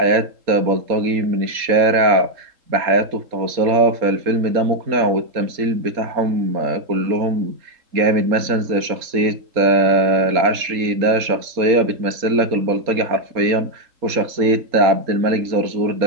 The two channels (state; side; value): late; left; 4.2 ms